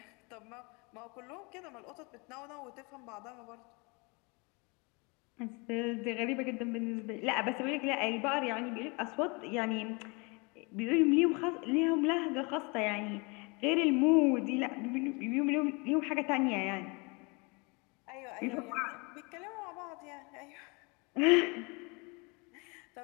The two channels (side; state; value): right; quieter; 29.5 dB